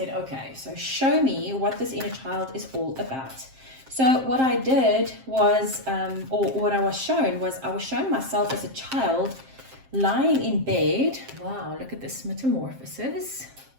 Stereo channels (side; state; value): left; late; 7.6 ms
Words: okay, so show me what this inner child is all about. So what I did was, or what I was shown was, I was showing myself as a child lying in bed. Wow, look at this metamorphosis.